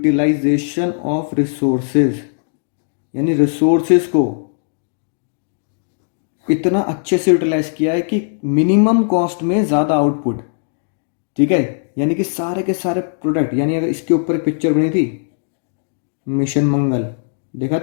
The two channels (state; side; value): silent; right; digital silence